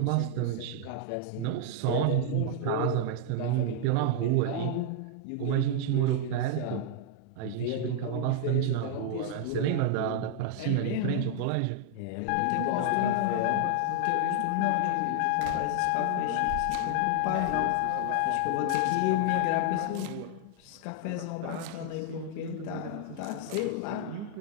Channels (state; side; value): different; both; correlation 0.00